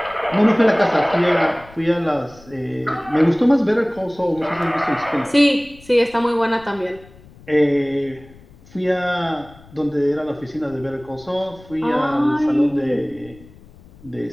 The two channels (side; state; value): left; noise; rumble, 23 dB below the sound